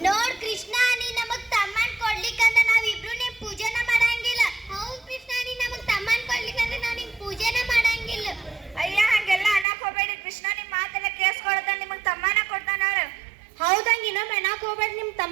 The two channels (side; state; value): left; drops out; at 9.7 s